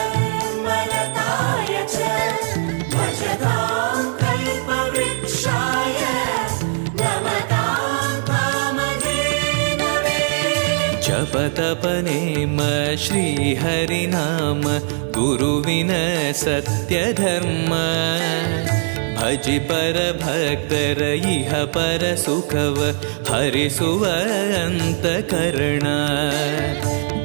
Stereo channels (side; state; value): left; silent; 66 dB below the other